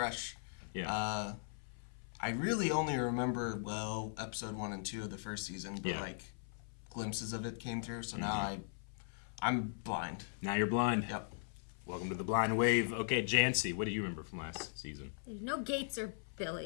Yeah. I really only remember, episode 1 and 2 of the first season, but glimpses of it came through, so now I'm blind. Now you're blind. Yep. Welcome to the Blind Wave. Okay, Janci, what do you remember from last season? There's no Gates or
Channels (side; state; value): right; silent; 52 dB below the other